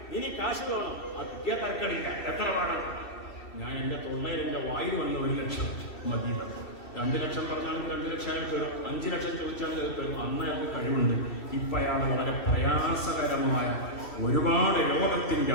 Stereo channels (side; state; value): right; late; 2.7 ms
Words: ഇനി കാശ് വേണം. ആ കിട്ടിയ തരക്കടില്ല. എത്ര വേണം? ഞാൻ എൻ്റെ തൊള്ളയിൽ എൻ്റെ വായിൽ വന്ന 1 ലക്ഷം മതി. 2 ലക്ഷം പറഞ്ഞാലും 2 ലക്ഷം അയാൾ തരും. 5 ലക്ഷം ചോദിച്ചാൽ തരും. അന്ന് അയാൾക്ക് കഴിവുണ്ട്. ഇപ്പം അയാൾ വളരെ പ്രയാസകരമായ ഒരുപാട് രോഗത്തിൻ്റെ